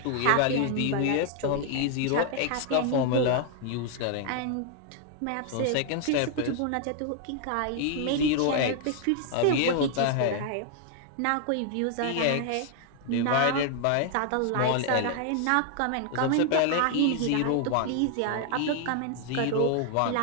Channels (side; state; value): both; different; correlation 0.00